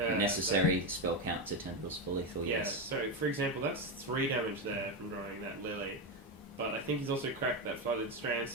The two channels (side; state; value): both; normal; correlation 0.11